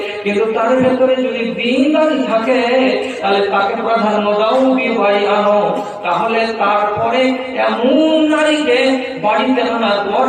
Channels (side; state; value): both; identical; correlation 1.00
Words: কিন্তু তার ভেতরে যদি দিনদারি থাকে তাহলে তাকে প্রাধান্য দাও, বিবাহ আনো। তাহলে তারপরে এমন নারীকে বাড়িতে আনার পর